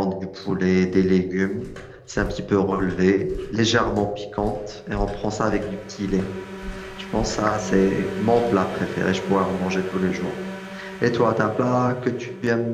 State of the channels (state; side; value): identical; both; correlation 1.00